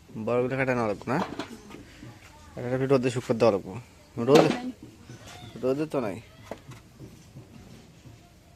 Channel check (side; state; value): both; identical; correlation 1.00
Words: বড়গুলো কাটানো লাগবো না, একটু রোদে শুকতে দেওয়া লাগবো। রোদে তো নাই,